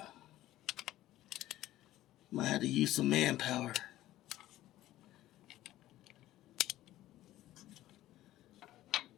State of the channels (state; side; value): quieter; right; 14.8 dB